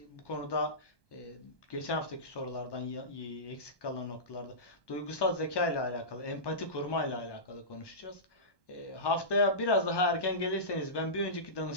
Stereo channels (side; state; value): right; late; 1.2 ms